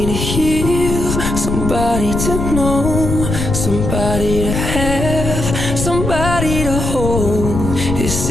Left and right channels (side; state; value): left; noise; rumble, 3 dB below the sound